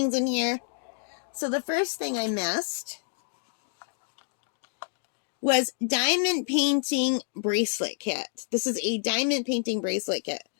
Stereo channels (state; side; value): silent; right; digital silence